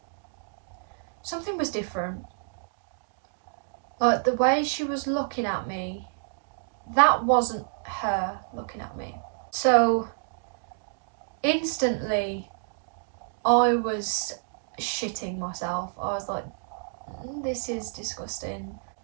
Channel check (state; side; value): silent; left; digital silence